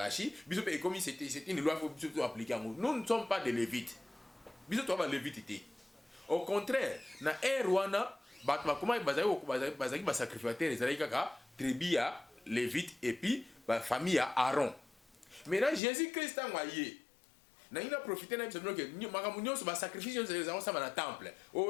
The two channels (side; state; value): right; drops out; at 15.8 s